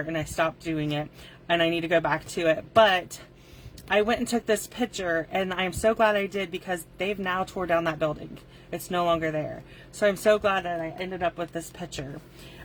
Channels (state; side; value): identical; both; correlation 1.00